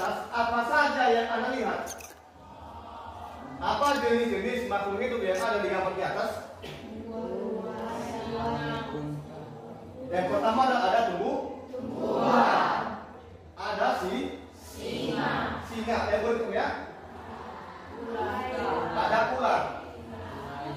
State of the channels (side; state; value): both; identical; correlation 1.00